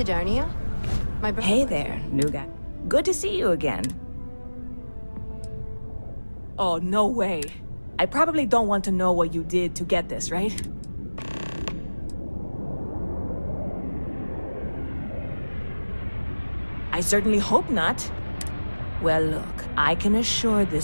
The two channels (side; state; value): both; inverted; correlation -1.00